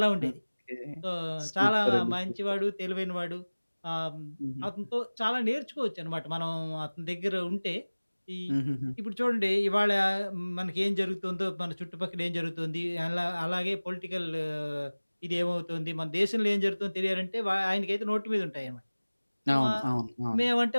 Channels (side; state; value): both; inverted; correlation -1.00